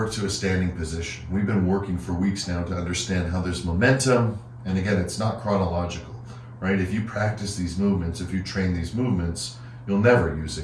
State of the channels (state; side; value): identical; both; correlation 1.00